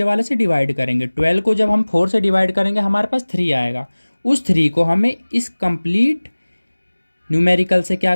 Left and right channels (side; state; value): both; inverted; correlation -1.00